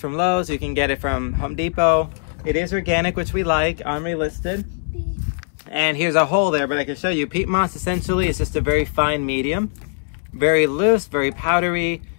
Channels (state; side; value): silent; right; 65 dB below the other